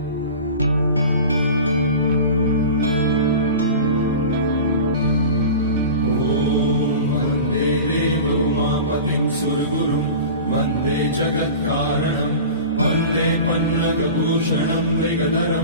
उमापतिं सुरगुरुं वन्दे जगत्कारणं वन्दे पन्नगभूषणं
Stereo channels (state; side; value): inverted; both; correlation -0.35